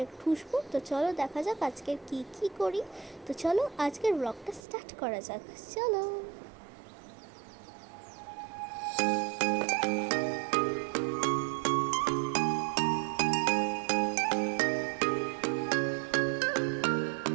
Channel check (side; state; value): left; drops out; at 4.6 s